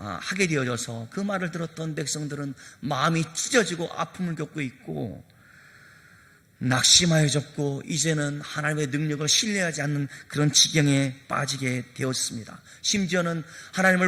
되어져서 그 말을 들었던 백성들은 마음이 찢어지고 아픔을 겪고 있고 낙심하여졌고 이제는 하나님의 능력을 신뢰하지 않는 그런 지경에 빠지게 되었습니다. 심지어는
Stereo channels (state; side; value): identical; both; correlation 1.00